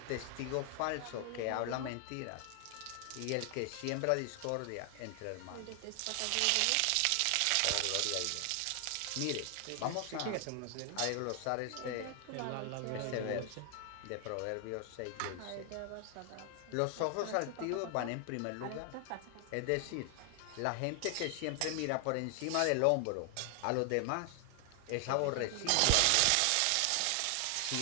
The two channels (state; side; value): different; both; correlation 0.00